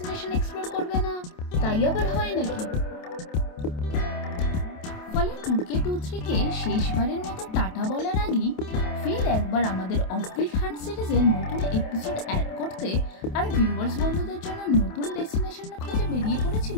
এক্সপ্লোর করবে না, তাই আবার হয় নাকি? ফলে 2K23 শেষবারের মতো টাটা বলার আগেই ফের একবার আমাদের অফবিট হান্ট সিরিজের নতুন এপিসোড অ্যাড করতে আর ভিউয়ার্স বন্ধুদের জন্য নতুন ডেস্টিনেশন খুঁজে বেরিয়ে পড়েছিল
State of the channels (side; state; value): right; late; 28 ms